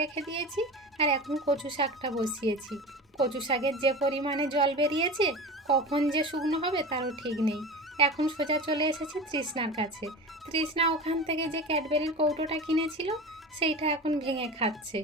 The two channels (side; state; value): both; normal; correlation 0.31